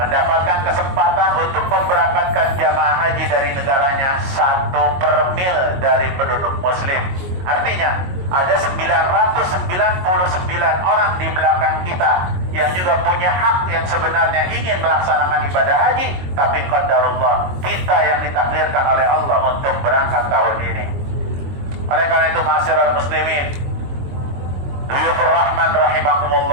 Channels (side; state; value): left; late; 22 ms